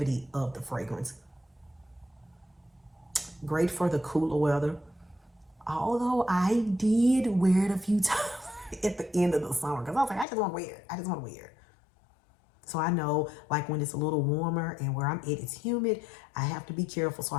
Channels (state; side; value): drops out; right; at 10.2 s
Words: of the fragrance. Great for the cooler weather. Although I did wear it a few times at the end of the summer because I was like, I just want to wear it. I just want to wear it. So I know like when it's a little warmer and where I'm at, it's humid, I have to be careful. So